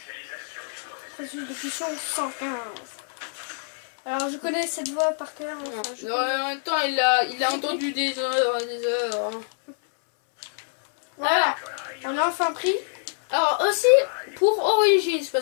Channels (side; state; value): right; silent; 61 dB below the other